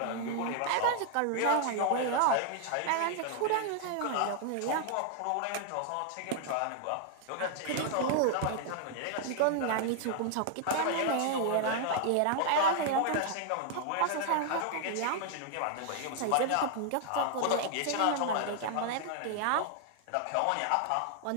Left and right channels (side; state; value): both; different; correlation 0.00